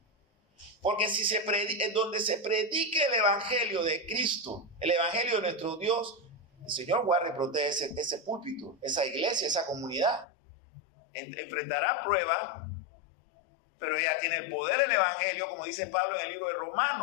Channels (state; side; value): drops out; right; at 10.2 s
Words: Porque si donde se predique el evangelio de Cristo, el evangelio de nuestro Dios, el Señor guarda y protege ese púlpito, esa iglesia, esa comunidad. Enfrentará pruebas, pero ella tiene el poder del evangelio, como dice Pablo en el libro de